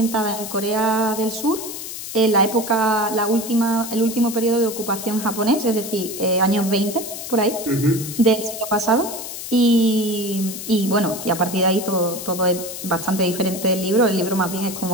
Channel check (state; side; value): noise; left; hiss, 9 dB below the sound